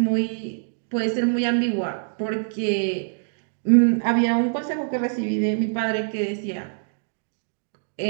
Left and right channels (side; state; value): left; silent; digital silence